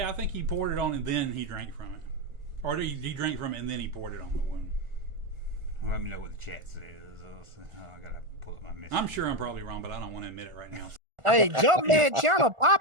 I think he poured it on and then he drank from it, or he drank from it and then he poured it on the wound. Let me know what the chat says. I gotta pull up my message. I'm sure I'm probably wrong, but I don't want to admit it right now. Hey, Junkman channel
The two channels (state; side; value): late; left; 1.4 ms